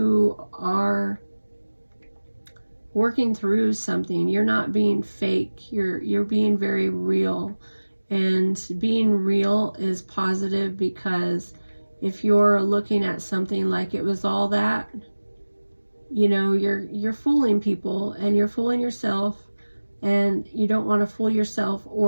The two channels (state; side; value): inverted; both; correlation -1.00